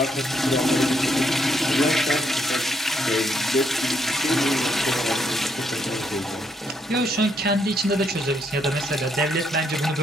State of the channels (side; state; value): both; normal; correlation 0.75